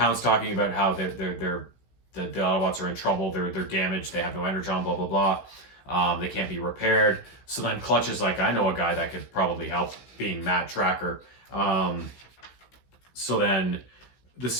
talking about how the Autobots are in trouble. They're damaged. They have no Energon. Blah blah blah. They can't be repaired. So then Clutch is like, I know a guy that could probably help, being Matt Tracker. So then the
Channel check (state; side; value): late; right; 16 ms